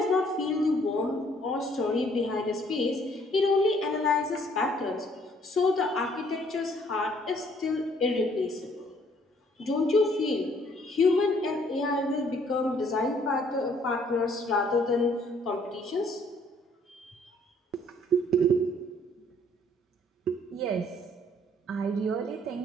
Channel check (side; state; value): both; normal; correlation 0.63